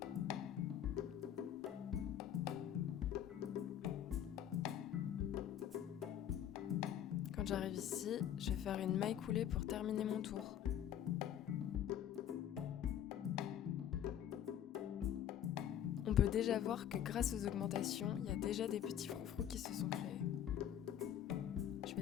Quand j'arrive ici, je vais faire une maille coulée pour terminer mon tour. On peut déjà voir que grâce aux augmentations, il y a déjà des petits froufrous qui se sont créés. Je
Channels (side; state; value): right; quieter; 10.2 dB